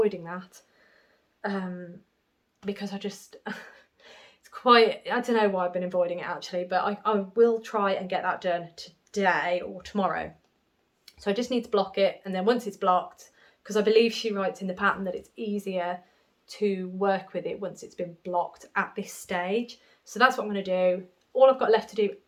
that because I just, it's quite, I don't know why I've been avoiding it actually, but I will try and get that done today or tomorrow. So I just need to block it, and then once it's blocked, because I believe she writes in the pattern that it's easier to work with it once it's been blocked at this stage. So that's what I'm going to do. All I've got left to do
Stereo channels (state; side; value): identical; both; correlation 1.00